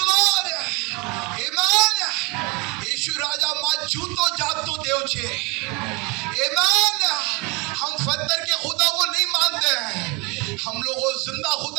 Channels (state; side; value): quieter; left; 28.0 dB